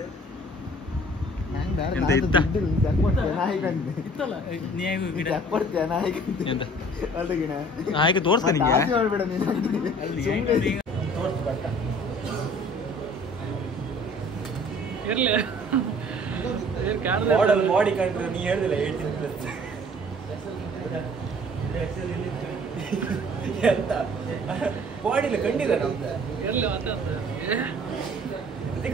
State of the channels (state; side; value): normal; both; correlation 0.52